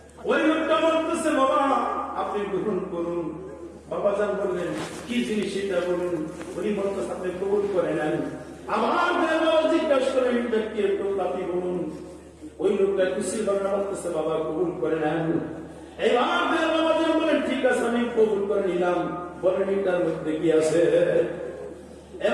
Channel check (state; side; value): identical; both; correlation 1.00